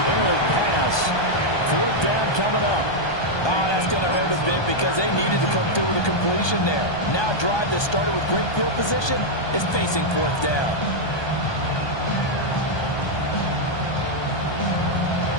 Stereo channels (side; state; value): right; late; 1.2 ms